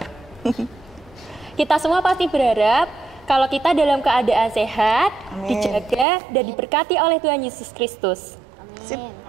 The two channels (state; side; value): drops out; left; at 6.1 s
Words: Kita semua pasti berharap kalau kita dalam keadaan sehat, Amin. dijaga dan diberkati oleh Tuhan Yesus Kristus. Amin.